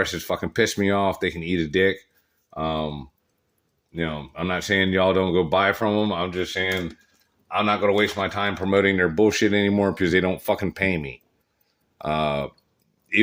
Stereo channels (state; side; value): identical; both; correlation 1.00